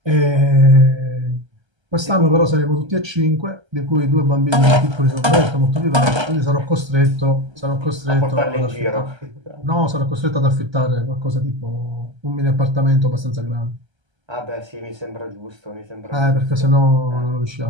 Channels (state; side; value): late; left; 1.3 ms